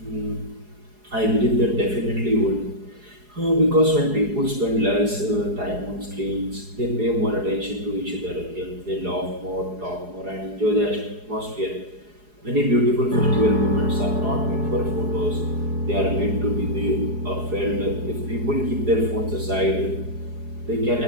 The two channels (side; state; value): left; late; 4.8 ms